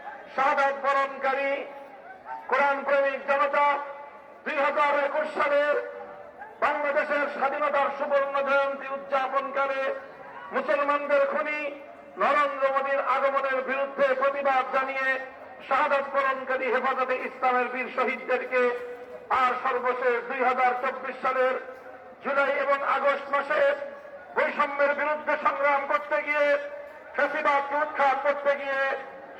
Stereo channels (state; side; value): identical; both; correlation 1.00